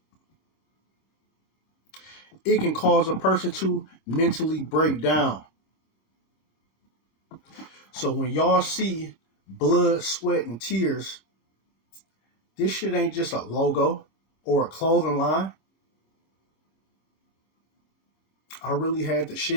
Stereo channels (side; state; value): right; late; 26 ms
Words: It can cause a person to mentally break down. So when y'all see blood, sweat, and tears, this shit ain't just a logo or a clothing line. I really had to